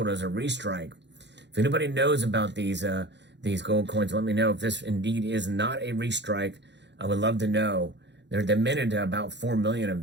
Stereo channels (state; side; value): late; left; 0.51 ms